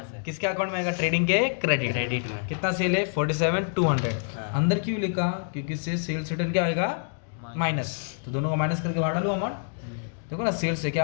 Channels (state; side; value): silent; right; digital silence